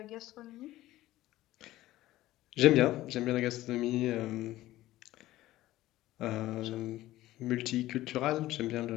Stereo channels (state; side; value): quieter; right; 15.8 dB